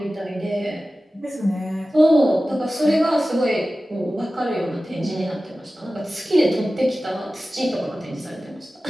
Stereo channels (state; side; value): normal; both; correlation 0.95